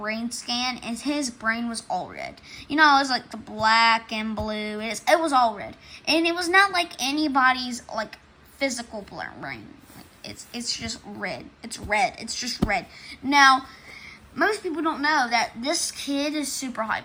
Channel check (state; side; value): identical; both; correlation 1.00